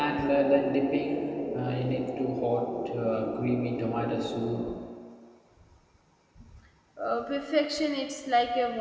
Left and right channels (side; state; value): both; identical; correlation 1.00